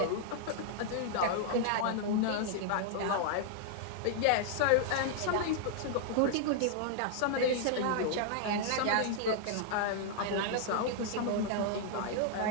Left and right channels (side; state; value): both; different; correlation -0.01